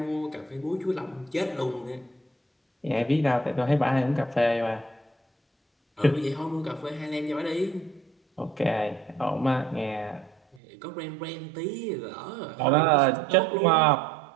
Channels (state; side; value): drops out; left; at 10.6 s